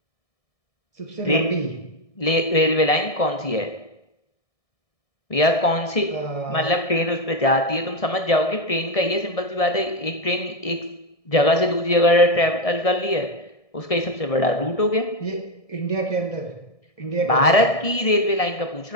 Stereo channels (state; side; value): late; right; 1.7 ms